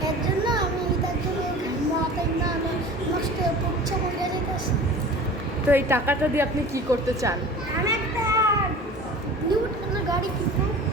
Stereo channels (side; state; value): both; normal; correlation 0.40